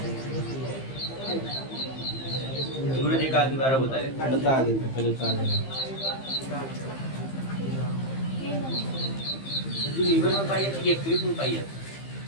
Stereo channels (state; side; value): late; right; 15 ms